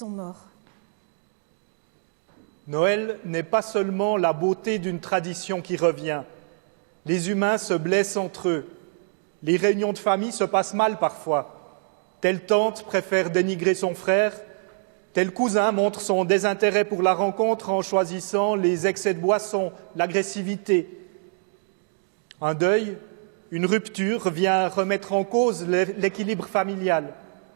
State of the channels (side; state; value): left; silent; digital silence